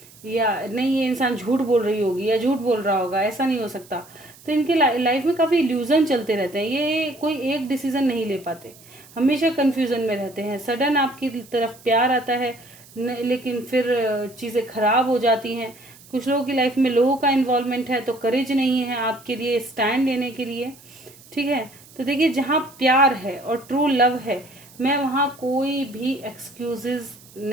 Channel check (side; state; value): right; noise; hiss, 23 dB below the sound